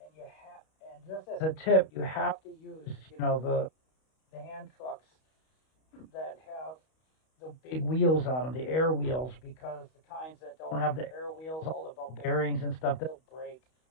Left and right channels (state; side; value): late; right; 32 ms